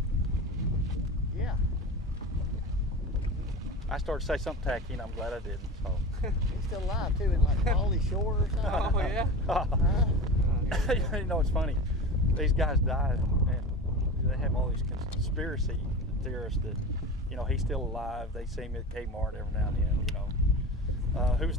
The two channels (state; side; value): normal; both; correlation 0.31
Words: Yeah. I started to say something tacky, and I'm glad I didn't. So. He's still alive too, in like Pauly Shore or something. Oh, yeah? It's funny. These guys died, and they have all these conspiracy theorists that, he's still alive. They see him at Kmart every now and then. Who's